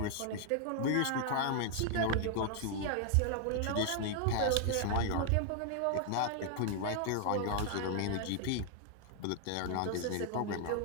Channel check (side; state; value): both; different; correlation 0.00